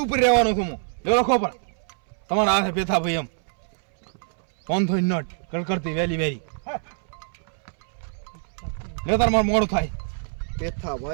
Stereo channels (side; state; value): left; silent; 62 dB below the other